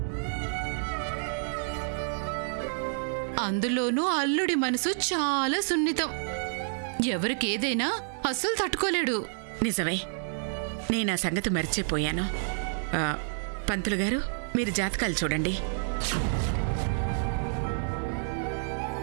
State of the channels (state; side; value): silent; left; digital silence